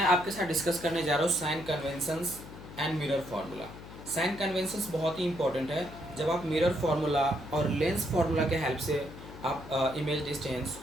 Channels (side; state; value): left; noise; hum, 15 dB below the sound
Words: आपके साथ डिस्कस करने जा रहा हूँ sign conventions and mirror formula. Sign conventions बहुत ही इंपॉर्टेंट है। जब आप मिरर फार्मूला और लेंस फार्मूला के हेल्प से आप इमेज डिस्टेंस,